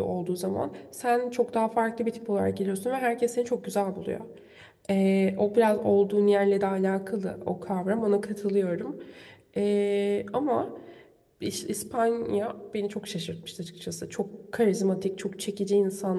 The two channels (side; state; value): both; identical; correlation 1.00